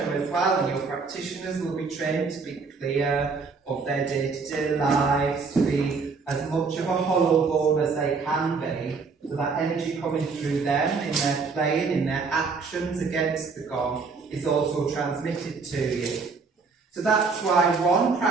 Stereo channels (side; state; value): left; quieter; 4.7 dB